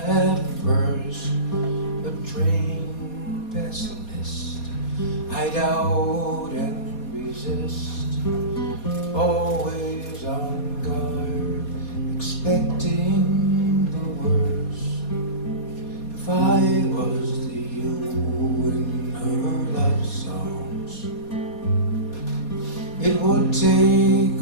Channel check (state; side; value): late; right; 4.2 ms